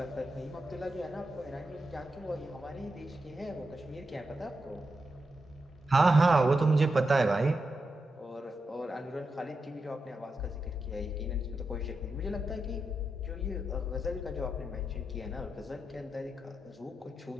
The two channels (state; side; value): normal; both; correlation 0.87